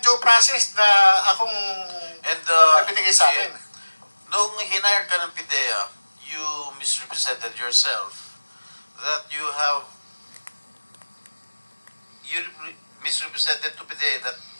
due process na akong binigay sa akin. Nung hinire ka ng PDEA, you misrepresented yourself that you misrepresented to PDEA that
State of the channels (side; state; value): both; inverted; correlation -1.00